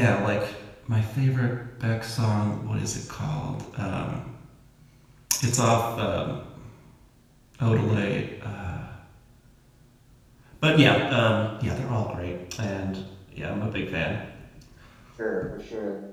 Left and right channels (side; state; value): both; identical; correlation 1.00